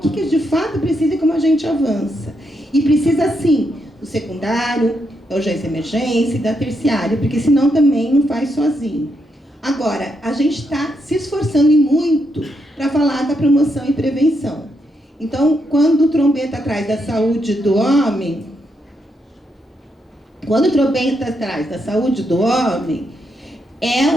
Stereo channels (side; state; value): both; normal; correlation 0.80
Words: que de fato precisa e como a gente avança. E precisa, sim, do secundário, da urgência e emergência e da terciária, porque senão também não faz sozinho. Agora, a gente está se esforçando e muito para falar da promoção e prevenção. Então, quando o Trombeta atrás da saúde do homem, é